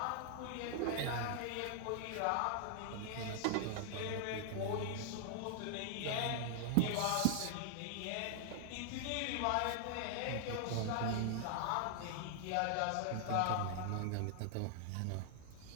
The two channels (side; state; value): both; different; correlation -0.01